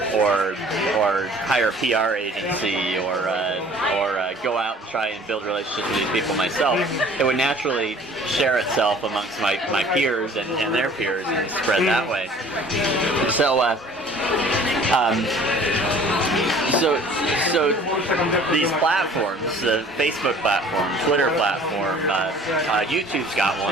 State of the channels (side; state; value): both; normal; correlation 0.50